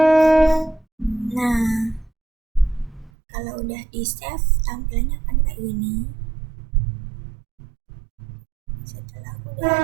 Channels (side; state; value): left; drops out; at 3.1 s